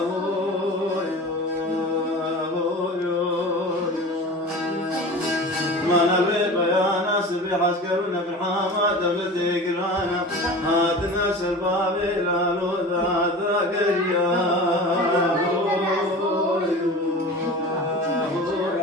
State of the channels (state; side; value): normal; both; correlation 0.35